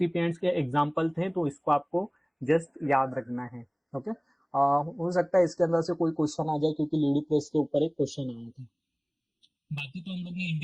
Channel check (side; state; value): both; identical; correlation 1.00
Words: के एग्जांपल थे, तो इसको आपको जस्ट याद रखना है। ओके। हो सकता है इसके अंदर से कोई क्वेश्चन आ जाए, क्योंकि लीडी प्रेस के ऊपर एक क्वेश्चन आया था। बाकी तो हम लोग ने